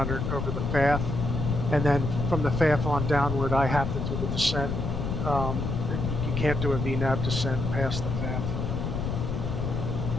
over the FAF. And then from the FAF on downward, I have to do the descent. You can't do a VNAV descent past the FAF.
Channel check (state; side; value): noise; left; rumble, 2 dB below the sound